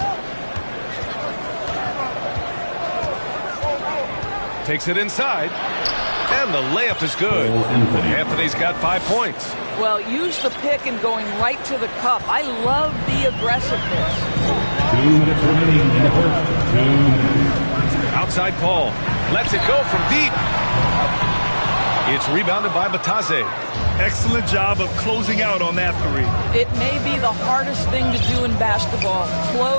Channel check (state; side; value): inverted; both; correlation -1.00